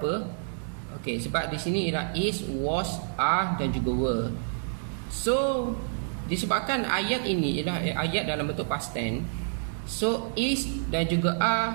Okey, sebab di sini ialah is, was, are dan juga were. So, disebabkan ayat ini ialah ayat dalam bentuk past tense, so is dan juga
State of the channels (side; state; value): left; silent; digital silence